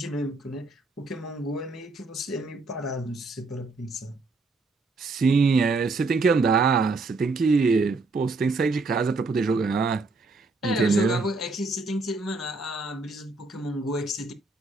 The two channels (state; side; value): quieter; left; 3.6 dB